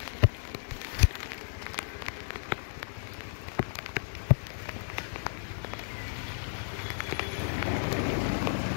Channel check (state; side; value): silent; right; digital silence